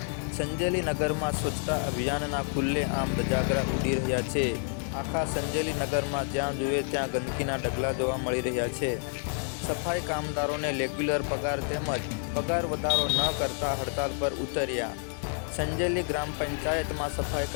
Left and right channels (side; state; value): right; silent; 55 dB below the other